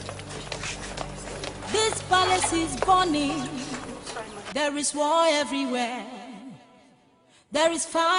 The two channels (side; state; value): both; identical; correlation 1.00